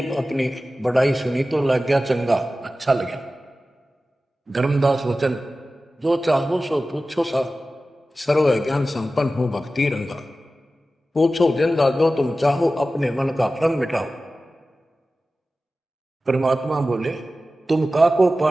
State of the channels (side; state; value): both; normal; correlation 0.95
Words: अपनी बड़ाई सुनी तो लग गया चंगा, अच्छा लगा। धर्मदास वचन, जो चाहो सो पूछो सा, सर्व ज्ञान संपन्न हो भक्ति रंगा। पूछो जिंदा जो तुम चाहो, अपने मन का भ्रम मिटाओ। परमात्मा बोले, तुम का को